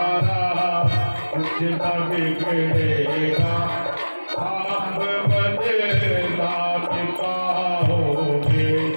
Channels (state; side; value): inverted; both; correlation -1.00